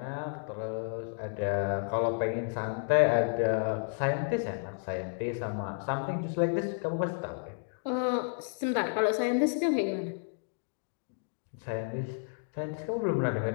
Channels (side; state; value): right; silent; digital silence